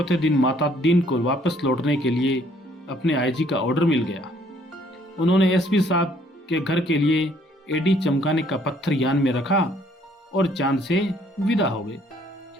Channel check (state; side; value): normal; both; correlation 0.63